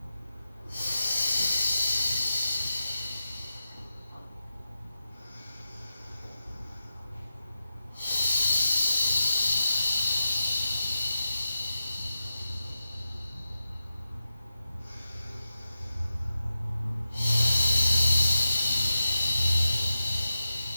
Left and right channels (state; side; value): inverted; both; correlation -0.91